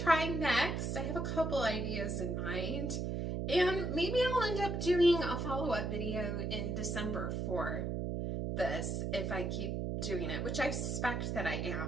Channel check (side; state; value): right; noise; hum, 1 dB below the sound